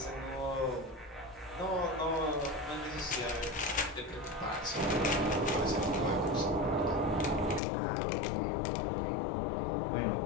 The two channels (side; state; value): right; drops out; at 7.6 s